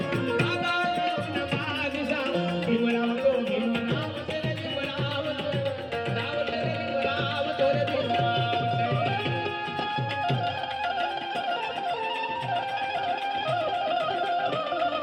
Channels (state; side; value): identical; both; correlation 1.00